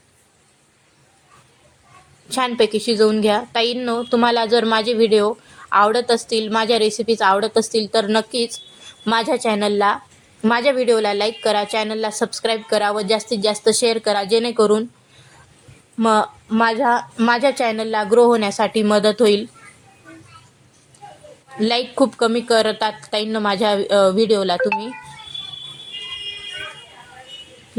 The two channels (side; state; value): both; identical; correlation 1.00